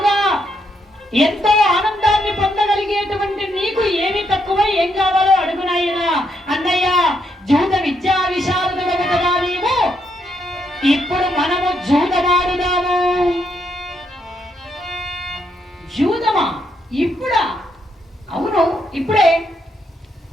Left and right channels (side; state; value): both; normal; correlation 0.77